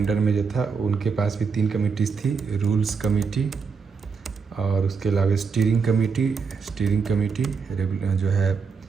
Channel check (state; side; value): quieter; left; 5.4 dB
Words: में, जो था उनके पास भी 3 कमेटीज़ थी, रूल्स कमेटी और उसके अलावा स्टीयरिंग कमेटी जो है